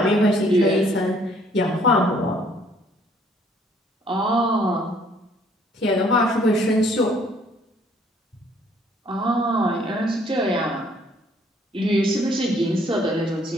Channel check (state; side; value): normal; both; correlation 0.62